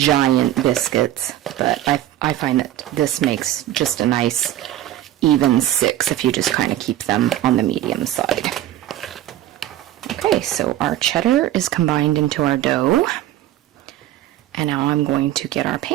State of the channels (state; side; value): quieter; left; 13.1 dB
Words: biscuits, but I find that this makes just a nice even 6 if you just kind of keep them on the medium side. Okay, so our cheddar is combined into our dough, and now I'm going to get our